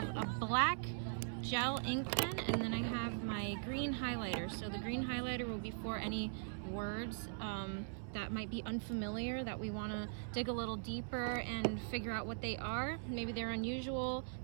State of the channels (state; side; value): silent; left; 50 dB below the other